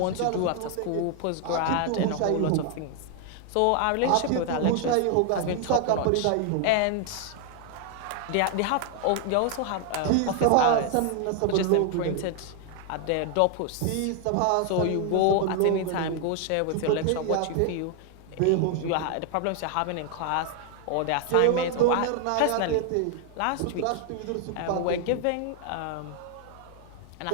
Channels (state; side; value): different; both; correlation 0.00